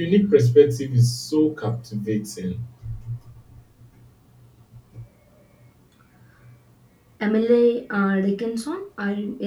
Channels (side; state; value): both; identical; correlation 1.00